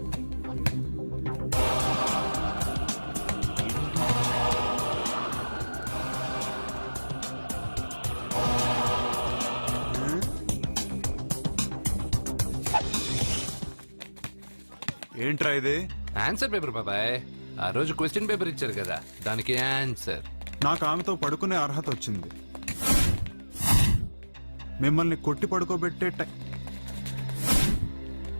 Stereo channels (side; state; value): both; inverted; correlation -1.00